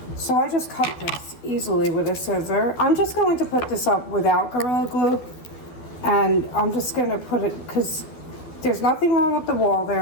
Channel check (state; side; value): late; right; 12 ms